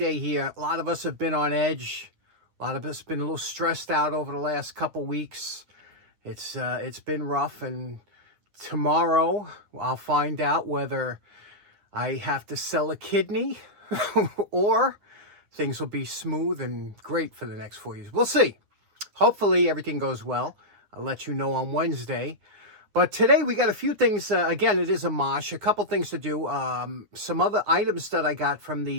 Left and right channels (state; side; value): late; left; 9.8 ms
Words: here. A lot of us have been on edge. A lot of us have been a little stressed out over the last couple weeks. It's been rough, and tomorrow I'll find out whether I have to sell a kidney or things will be smooth and great for the next 4 years. We'll see. Hopefully everything goes well. I'll let you know on Wednesday. But today we got a few things. Again, it is a mosh. A couple things to do. Some other items that I got from